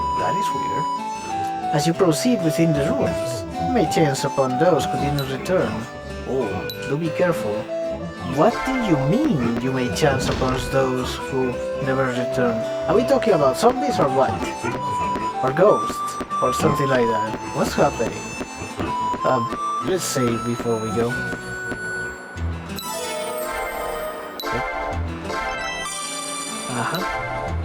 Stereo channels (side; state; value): both; identical; correlation 1.00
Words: That is weird. As you proceed within the ruins, you may chance upon those who did not return. Oh, do be careful. What do you mean you may chance upon those who never return? Are we talking about zombies or what? Or ghosts? Or something like that? What's happening? Let's save before we go.